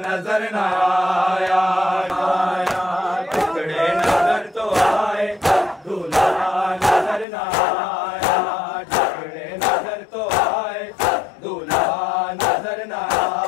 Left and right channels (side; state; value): right; drops out; at 7.2 s